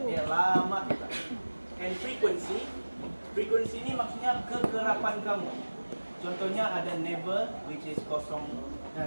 dia lama juga. And frequency ni maksudnya kekerapan kamu. Contohnya ada never, which is 0%,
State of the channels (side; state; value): both; inverted; correlation -1.00